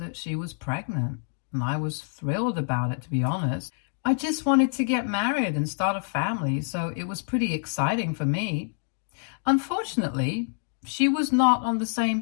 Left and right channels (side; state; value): right; silent; digital silence